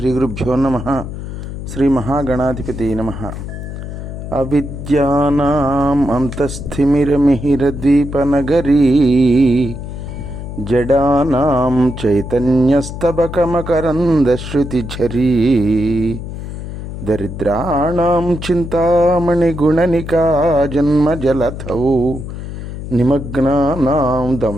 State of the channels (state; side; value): noise; left; hum, 8 dB below the sound